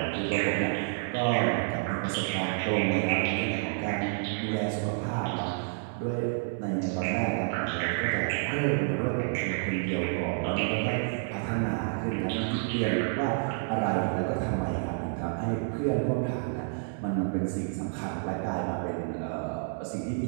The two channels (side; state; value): left; silent; 58 dB below the other